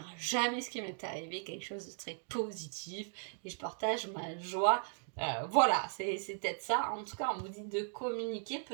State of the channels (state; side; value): silent; left; 53 dB below the other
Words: jamais ce qui m'est arrivé, quelque chose de très positif, et je partage ma joie. Voilà, c'est peut-être ça. En tout cas, on vous dit de communiquer